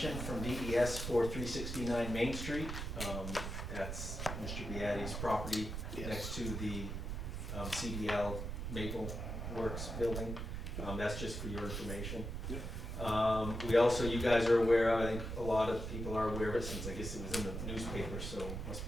from DES for 369 Main Street. That's Mr. Beatty's property Yes. next to the CDL Maple Works building. That's just for your information. We also, you guys are aware of, I think a lot of people are aware of it since I guess it was in the newspaper, so it must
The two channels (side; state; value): right; noise; rumble, 5 dB below the sound